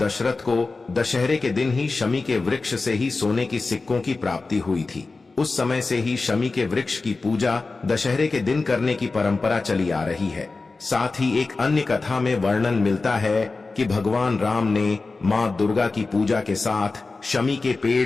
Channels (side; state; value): right; quieter; 3.8 dB